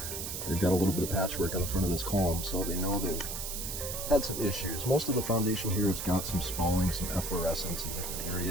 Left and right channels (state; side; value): noise; right; hiss, 5 dB below the sound